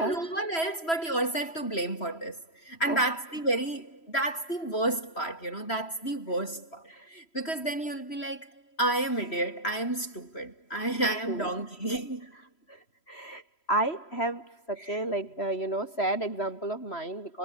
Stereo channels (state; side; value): late; right; 3.1 ms